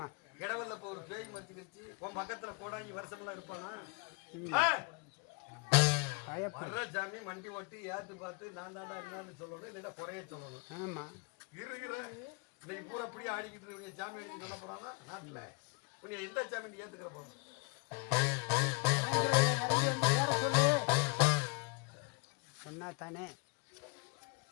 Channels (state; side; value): quieter; right; 31.5 dB